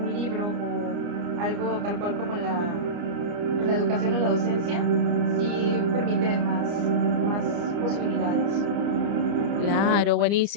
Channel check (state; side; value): late; left; 29 ms